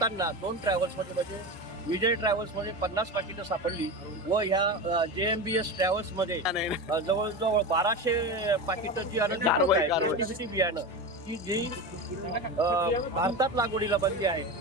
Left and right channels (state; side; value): normal; both; correlation 0.24